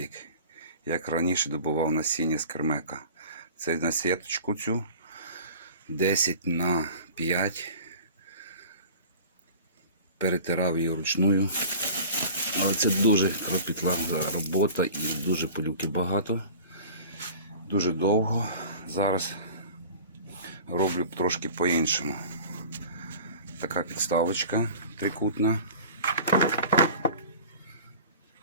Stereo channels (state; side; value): inverted; both; correlation -0.41